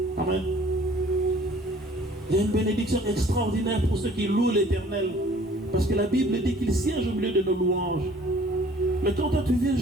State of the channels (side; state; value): both; normal; correlation 0.54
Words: Amen. Il y a une bénédiction extraordinaire pour ceux qui louent l'Éternel. Parce que la Bible dit qu'il siège au milieu de nos louanges. Mais quand toi tu viens